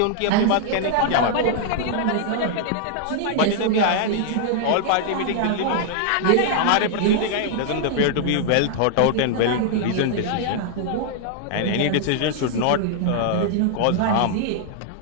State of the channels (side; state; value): both; different; correlation -0.01